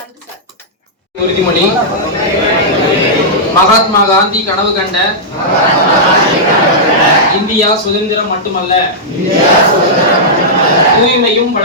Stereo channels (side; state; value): both; normal; correlation -0.10